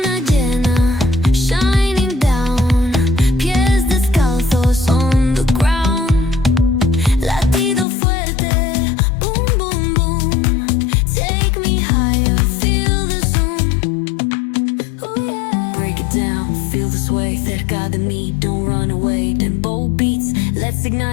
llena, shining down. Pies descalzos on the ground. Latido fuerte, boom, boom, boom. Take me higher, feel the zoom. Oh yeah. Break it down, feel the sway. Cerca de mí, don't run away. Tempo beats, let's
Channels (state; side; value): drops out; right; at 7.9 s